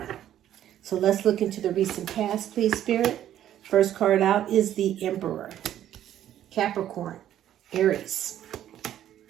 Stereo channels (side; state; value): left; quieter; 11.5 dB